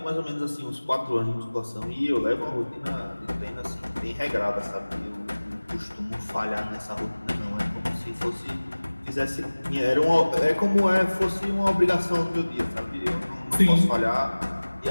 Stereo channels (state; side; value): inverted; both; correlation -1.00